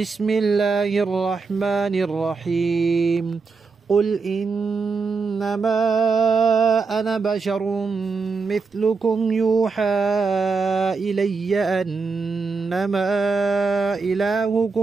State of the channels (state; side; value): quieter; left; 4.6 dB